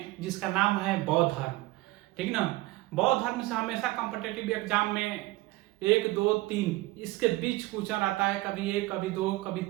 जिसका नाम है बौद्ध धर्म। ठीक ना। बौद्ध धर्म से हमेशा कॉम्पिटिटिव एग्जाम में 1, 2, 3 इसके बीच क्वेश्चन आता है। कभी 1, कभी 2,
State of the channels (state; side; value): quieter; left; 19.4 dB